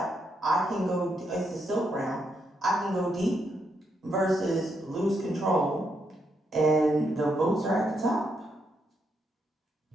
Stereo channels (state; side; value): normal; both; correlation 0.79